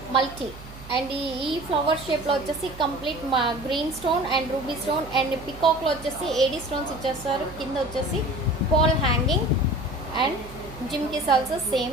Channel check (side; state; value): right; noise; hum, 16 dB below the sound